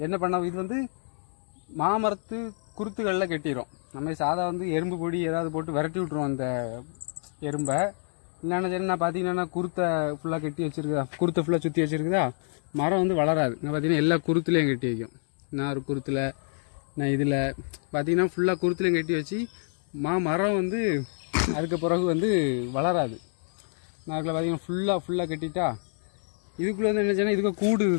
என்ன பண்ண, இது வந்து மாமரத்து குருத்துகளில் கட்டிடும். நம்ம சாதா வந்து எறும்பு பொடி ஏதாவது போட்டு விரட்டி விட்ருவோம் அந்த எறும்பை. இல்லைன்னா சரி நான் பார்த்தீங்கன்னா குருத்தை ஃபுல்லாக கட்டி வச்சுருக்குதா, குருத்தை ஃபுல்லாக சுற்றி வச்சுருக்குதா, மரம் வந்து வளராது. நான் பார்த்தீங்கன்னா எல்லா குருத்துலேயும் கட்டி வைக்கும். நான் ஒரு குருத்தில், நான் இதில் பார்த்தீங்கன்னா ஃபுல்லாக குருத்துலேயும் கட்டி வச்சு மரம் வந்து அதுக்கு பிறகு வந்து வளராது. நான் அதில் பார்த்தீங்கன்னா ஃபுல்லாக கட்டிட்டா இதுக்குள்ளே வந்து என்ன செய்யணும், இதுக்கு கூடு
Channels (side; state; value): right; silent; 60 dB below the other